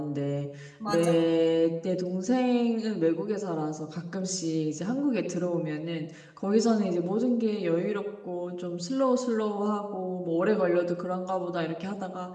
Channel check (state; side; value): identical; both; correlation 1.00